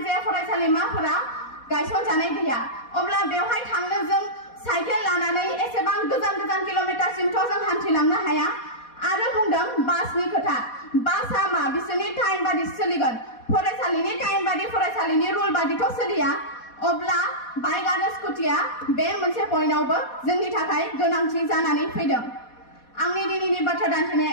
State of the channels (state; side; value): late; right; 4.2 ms